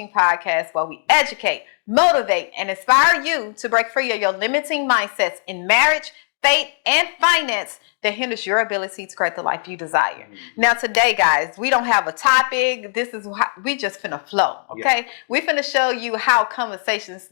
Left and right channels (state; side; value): silent; right; 58 dB below the other